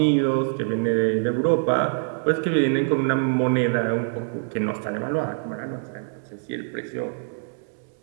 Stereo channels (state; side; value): silent; left; 62 dB below the other